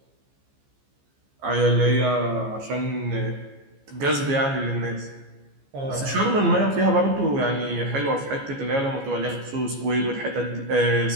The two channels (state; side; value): late; left; 15 ms